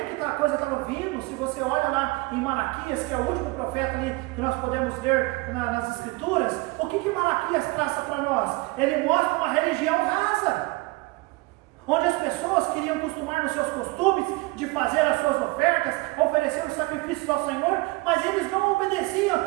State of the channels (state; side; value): quieter; left; 23.4 dB